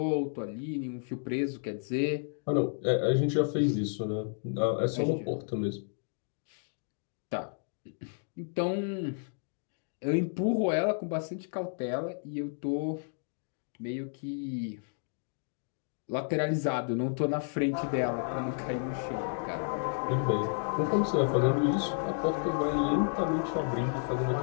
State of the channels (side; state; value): right; silent; digital silence